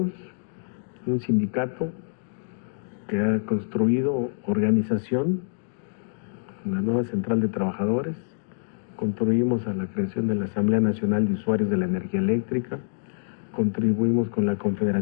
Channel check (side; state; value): right; silent; digital silence